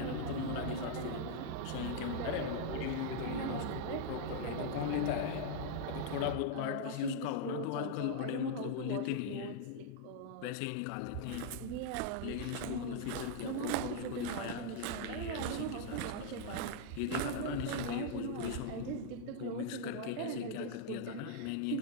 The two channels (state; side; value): different; both; correlation -0.01